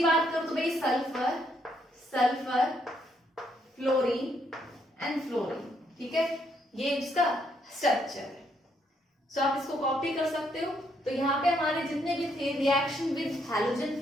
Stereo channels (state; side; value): normal; both; correlation 0.73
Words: बात करूं तो भाई sulphur, sulphur, fluorine and fluorine, ठीक है, ये इसका स्ट्रक्चर है। सो आप इसको कॉपी कर सकते हो। तो यहाँ पे हमारे जितने भी थे रिएक्शन विद हैलोजन